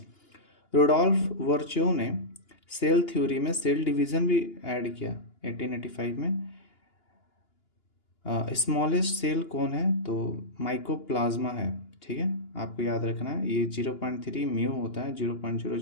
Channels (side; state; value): right; late; 2.9 ms